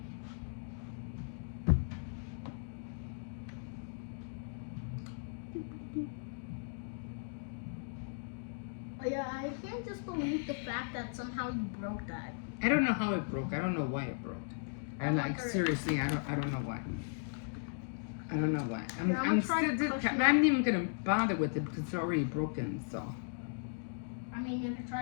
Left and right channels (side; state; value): right; silent; digital silence